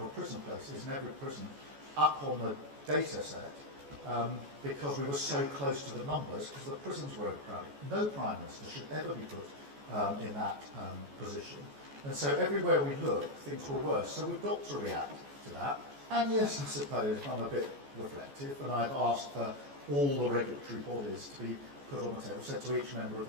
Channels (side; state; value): left; late; 14 ms